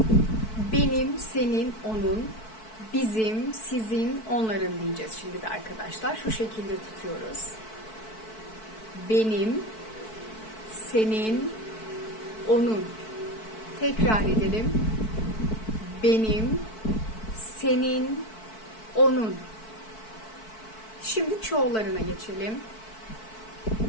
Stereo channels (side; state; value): right; late; 4.6 ms